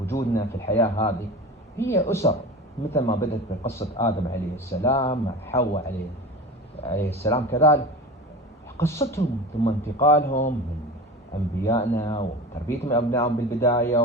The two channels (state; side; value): normal; both; correlation 0.31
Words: وجودنا في الحياة هذه هي أسر، مثل ما بدأت بقصة آدم عليه السلام مع حواء عليه السلام، كذلك قصتهم ثم انتقالهم من أنبيائنا وتربيتهم أبنائهم بالبداية،